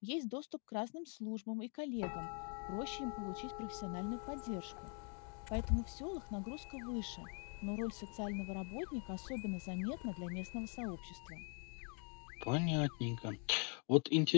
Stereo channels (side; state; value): right; quieter; 37.5 dB